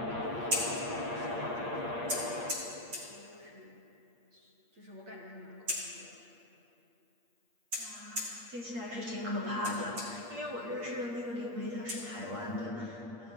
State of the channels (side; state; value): left; late; 8.5 ms